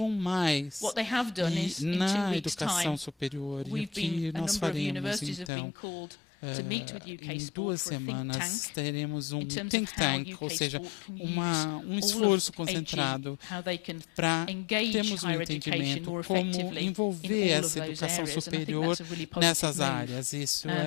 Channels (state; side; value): drops out; right; at 5.5 s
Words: mais na educação superior. E o que nós faremos, então, em 2 semanas teremos um think tank, ou seja, um esforço concentrado para termos um entendimento como envolver essa educação superior nessas áreas. Isso